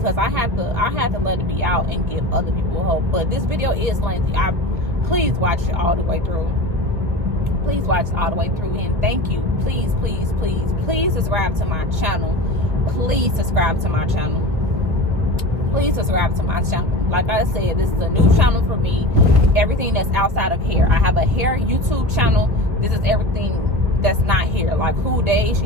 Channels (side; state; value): left; late; 1.4 ms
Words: I had to let it be out and give other people hope. But this video is lengthy. Please watch it all the way through. Please watch it all the way through, and thank you. Please subscribe to my channel. Please subscribe to my channel. Please subscribe to my channel. Like I said, this is a new channel for me. Everything that's outside of hair. I have a hair YouTube channel. This is everything that's not here, like who Deja